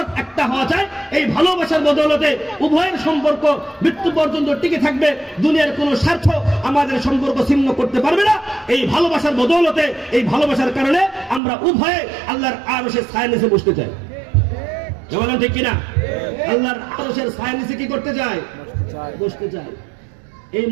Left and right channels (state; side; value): drops out; left; at 11.4 s